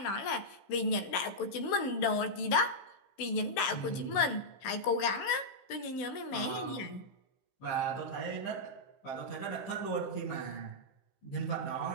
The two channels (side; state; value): right; late; 15 ms